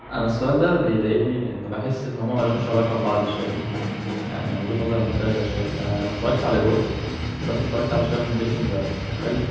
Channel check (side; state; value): both; identical; correlation 1.00